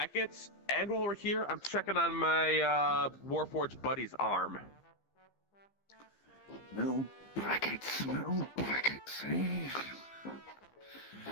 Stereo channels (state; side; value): late; right; 15 ms